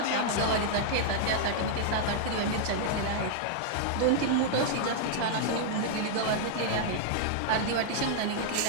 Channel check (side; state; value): both; different; correlation -0.01